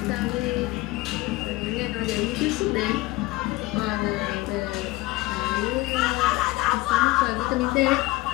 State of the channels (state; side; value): quieter; right; 19.8 dB